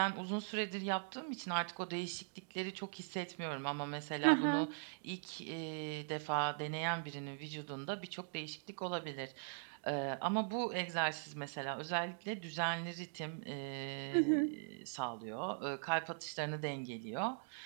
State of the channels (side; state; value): left; silent; digital silence